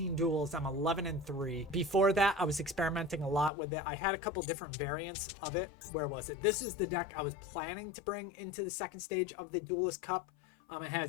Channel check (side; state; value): right; drops out; at 3.5 s